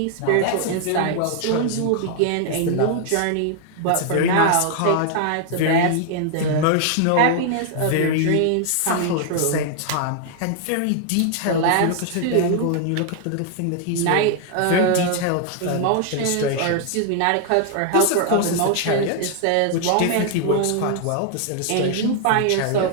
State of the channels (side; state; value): both; different; correlation 0.00